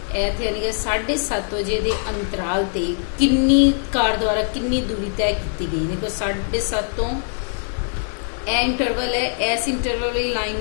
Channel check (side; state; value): right; silent; 64 dB below the other